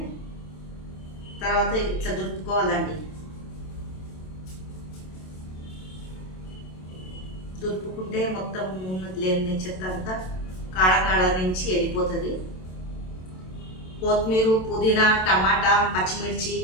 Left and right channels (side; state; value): right; late; 27 ms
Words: తర్వాత ఇట్లా దులుపుకోవాలండి. దులుపుకుంటే మొత్తం లేని చెత్త అంతా కాడ నుంచి వెళ్ళిపోతుంది. కొత్తిమీర పుదీనా టమాటా పచ్చిమిర్చి